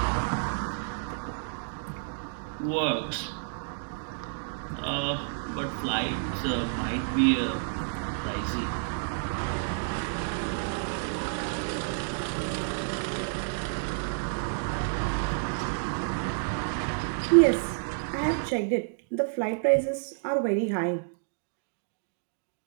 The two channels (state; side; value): silent; left; digital silence